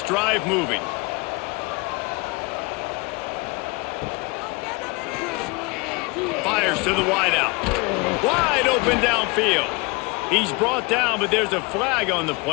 drive moving. Fires to the wideout. Wide open downfield. He's brought down, but there's a flag on the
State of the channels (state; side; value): quieter; right; 27.1 dB